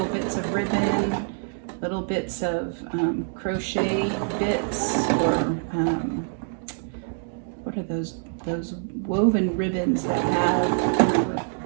bits of ribbon, little bits of crochet bits, or what are those woven ribbons that have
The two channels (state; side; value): silent; left; digital silence